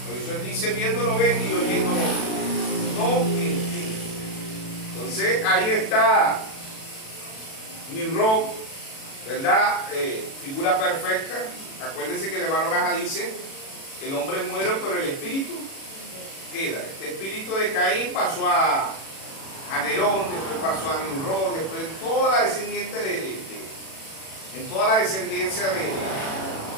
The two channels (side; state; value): right; late; 37 ms